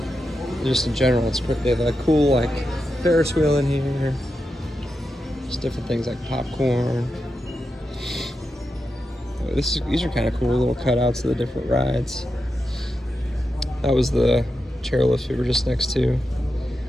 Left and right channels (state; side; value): normal; both; correlation 0.88